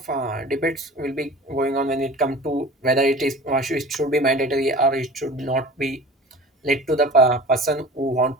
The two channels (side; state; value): both; normal; correlation 0.38